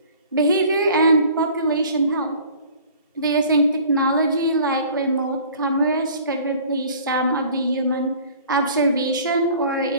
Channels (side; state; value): both; inverted; correlation -0.49